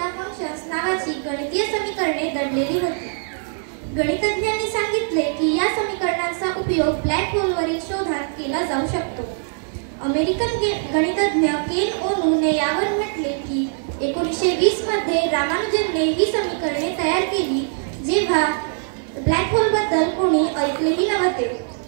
फंक्शन्स नावाची गणितीय समीकरणे दडलेली होती. गणितज्ञांनी सांगितले की या समीकरणांचा उपयोग ब्लॅक होलवरील शोधात केला जाऊ शकतो. अमेरिकन गणितज्ञ केन ओनूने यावर म्हटले की 1920 मध्ये रामानुजनने ही समीकरणे तयार केली जेव्हा ब्लॅक होलबद्दल कोणी ऐकलेही नव्हते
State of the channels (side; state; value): left; silent; 64 dB below the other